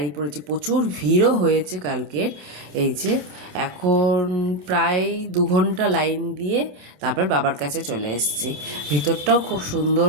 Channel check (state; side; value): late; left; 28 ms